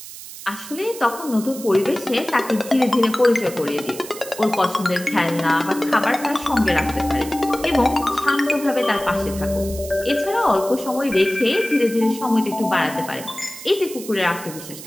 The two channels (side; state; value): right; noise; hiss, 13 dB below the sound